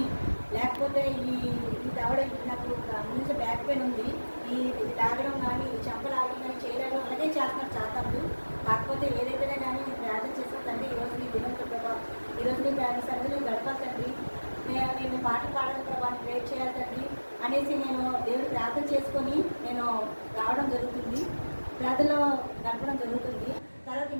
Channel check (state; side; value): inverted; both; correlation -1.00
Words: లేకపోతే ఈ దవడ నాకు ముందు బ్యాక్ పెయిన్ ఉంది, ఈ లాగడం కానీ చెంప లాగడం కానీ చేయడం అలాగే చేస్తున్నారు చాతాలు. కాకపోతే ఏదైతేనే కానీ ప్రార్థన చేస్తుందండి ఈరోజు నీ దినంతో ప్రభావం, ఈరోజు నీ సరిగ్గా గడపాలండి, నేను పాటలు పాడడం ప్రభావాన్ని ప్రేర్ చేయాలి తండ్రి అనేసి నేను దేవుడు ప్రార్థన చేసుకొని నేను రావడం జరుగుతుంది, ప్రార్థనలో గడపడం జరుగుతుంది. తర్వాత